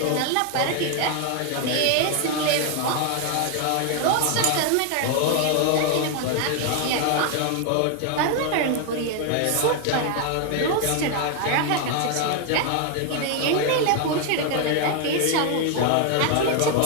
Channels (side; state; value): both; different; correlation 0.00